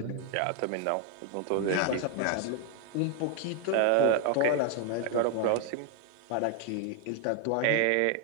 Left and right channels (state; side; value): different; both; correlation 0.01